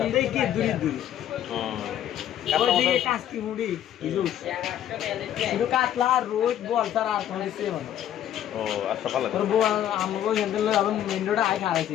কি দূরে দূরে কাস্তি মুড়ি কিন্তু কাতলা রোজ বল তার আর কোনো কিছু মানে ও আচ্ছা ভালো আমাকে হেঁটে আবার মেন রোডে আয়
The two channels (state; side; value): quieter; right; 11.1 dB